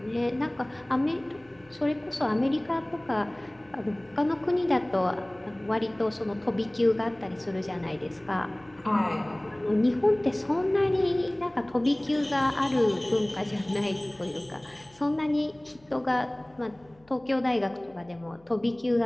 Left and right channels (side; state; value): left; noise; hum, 30 dB below the sound